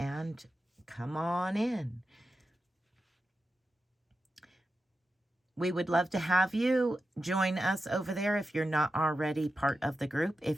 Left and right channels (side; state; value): both; normal; correlation 0.91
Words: come on in. We would love to have you join us over there if you're not already part of the group.